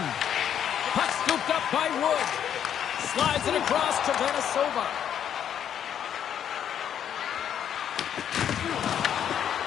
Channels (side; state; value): right; quieter; 9.3 dB